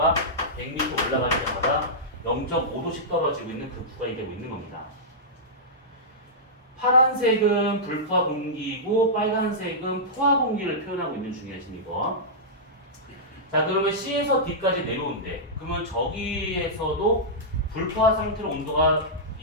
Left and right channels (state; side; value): normal; both; correlation -0.12